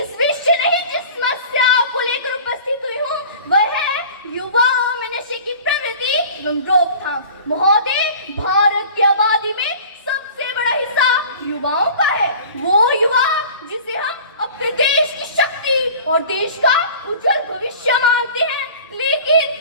समस्या को लेकर उपस्थित हुई हूँ वह है युवाओं में नशे की प्रवृत्ति एवं रोकथाम। महोदय, भारत की आबादी में सबसे बड़ा हिस्सा युवाओं का है। वो युवा जिसे हम अपने देश की शक्ति और देश का उज्जवल भविष्य मानते हैं,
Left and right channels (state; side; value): inverted; both; correlation -0.42